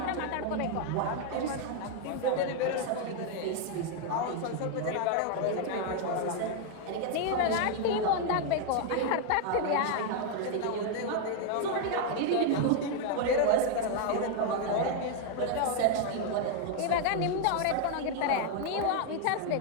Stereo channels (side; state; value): both; different; correlation 0.00